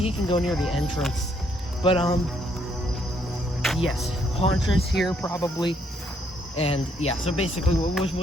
can go near the entrance, but yes, Hauntress here probably. And yeah, so basically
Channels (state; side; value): normal; both; correlation 0.71